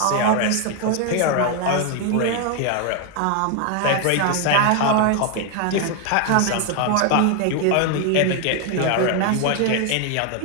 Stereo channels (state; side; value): different; both; correlation 0.01